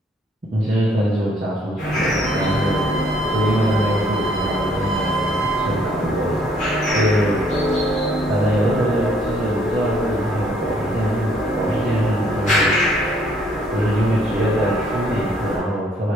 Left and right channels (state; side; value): normal; both; correlation 0.65